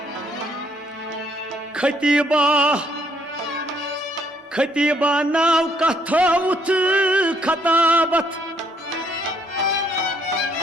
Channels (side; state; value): both; normal; correlation 0.68